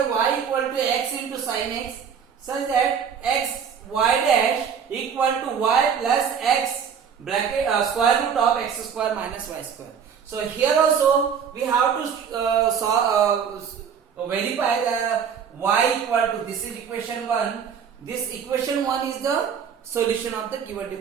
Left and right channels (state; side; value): quieter; left; 7.3 dB